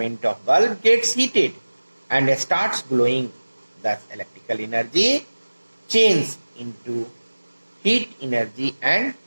of bulb gets heated and starts glowing. Thus electrical energy changes into heat energy and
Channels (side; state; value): both; inverted; correlation -1.00